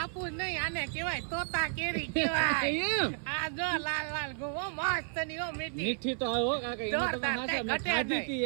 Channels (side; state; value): left; silent; 56 dB below the other